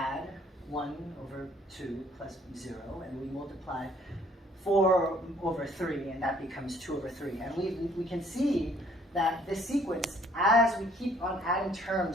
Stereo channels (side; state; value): both; normal; correlation 0.61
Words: 1 over 2 plus 0, and we multiply 4 over 3, and that becomes 2 over 3. And we can see that this sequence, as we keep on adding